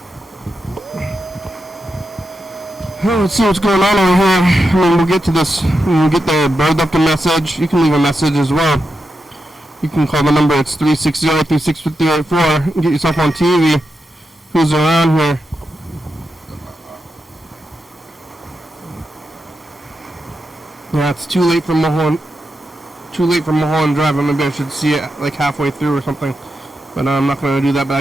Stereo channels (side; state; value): both; normal; correlation 0.87